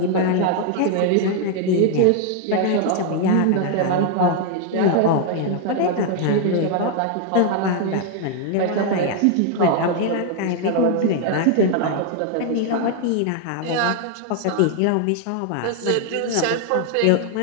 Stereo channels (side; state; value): both; different; correlation 0.00